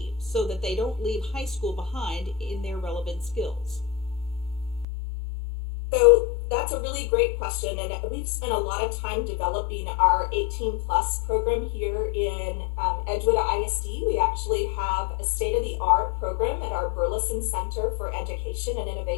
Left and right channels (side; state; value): right; drops out; at 4.9 s